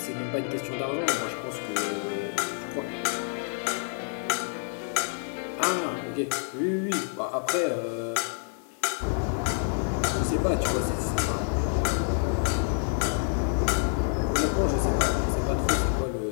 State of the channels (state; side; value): silent; right; 57 dB below the other